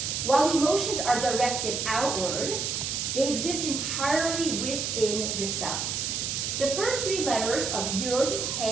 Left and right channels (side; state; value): right; noise; hiss, 2 dB below the sound